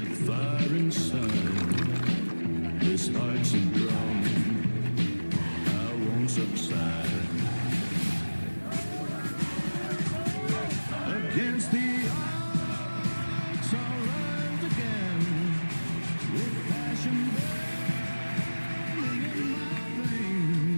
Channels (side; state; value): both; inverted; correlation -1.00